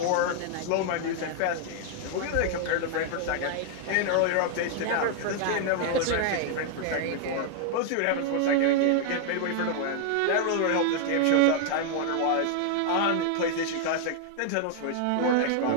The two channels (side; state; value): both; different; correlation 0.00